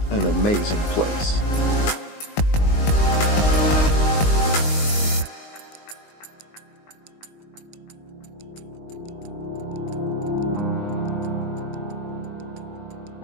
an amazing place.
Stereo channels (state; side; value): late; right; 19 ms